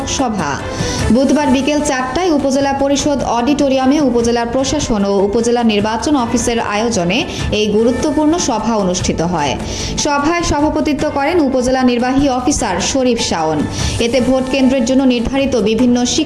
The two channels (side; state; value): both; identical; correlation 1.00